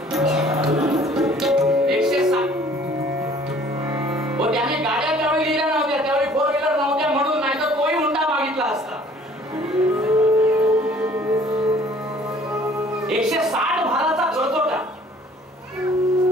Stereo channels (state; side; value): normal; both; correlation 0.55